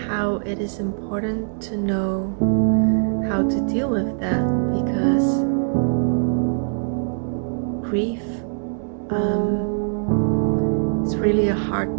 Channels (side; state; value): left; silent; digital silence